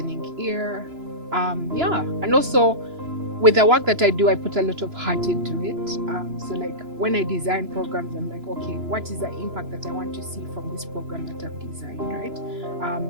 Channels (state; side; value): late; left; 2.9 ms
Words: ear. And also with the work that I do, I put a lot of heart into it. So like when I design programs, I'm like, okay, what is the impact that I want to see from this program that I've designed, right?